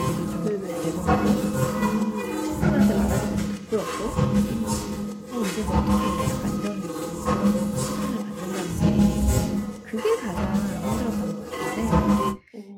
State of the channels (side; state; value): both; identical; correlation 1.00